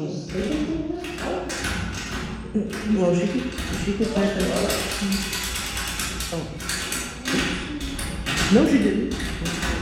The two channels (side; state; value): both; identical; correlation 1.00